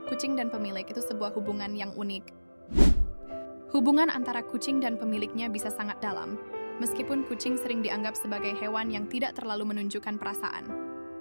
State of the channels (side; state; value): both; inverted; correlation -1.00